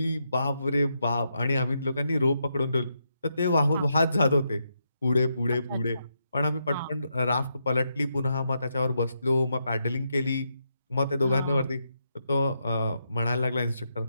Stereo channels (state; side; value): inverted; both; correlation -0.82